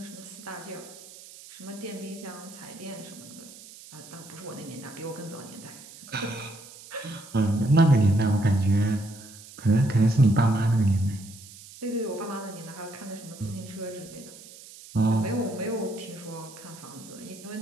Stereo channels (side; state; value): right; noise; hiss, 18 dB below the sound